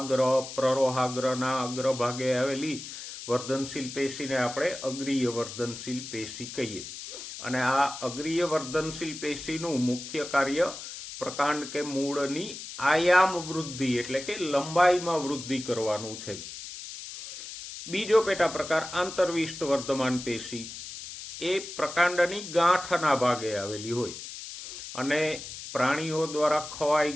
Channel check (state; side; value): noise; left; hiss, 11 dB below the sound